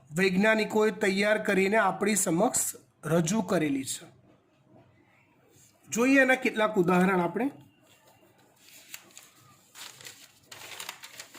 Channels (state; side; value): identical; both; correlation 1.00